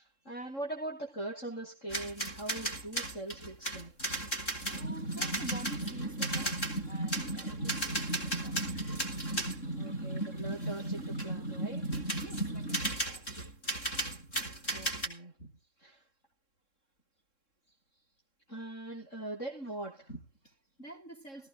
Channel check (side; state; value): right; late; 3.7 ms